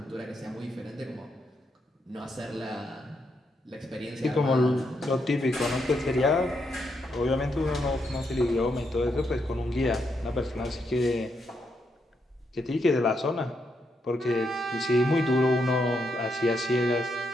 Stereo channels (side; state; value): both; normal; correlation 0.80